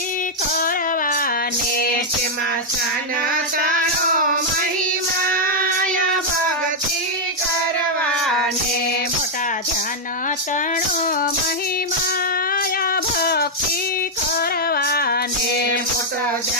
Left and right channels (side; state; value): both; normal; correlation -0.03